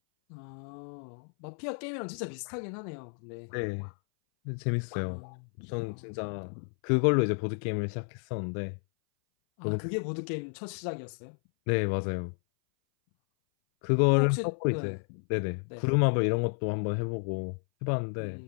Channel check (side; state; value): right; silent; 57 dB below the other